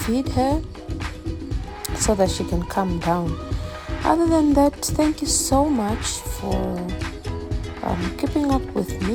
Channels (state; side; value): identical; both; correlation 1.00